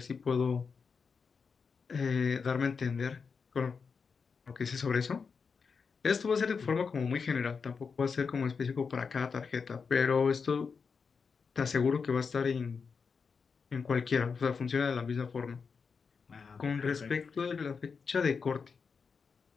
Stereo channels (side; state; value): right; quieter; 5.5 dB